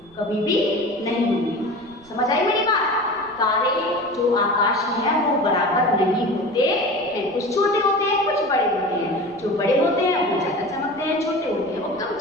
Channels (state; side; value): noise; right; rumble, 27 dB below the sound